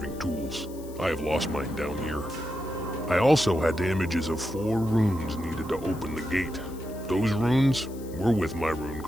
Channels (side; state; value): left; noise; hiss, 21 dB below the sound